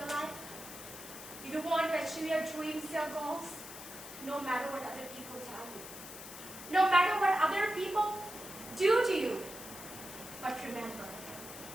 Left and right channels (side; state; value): left; noise; hiss, 12 dB below the sound